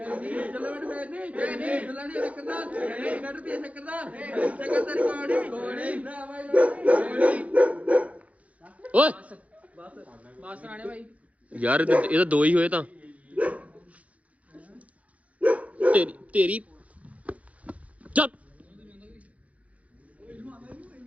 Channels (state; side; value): late; left; 0.067 ms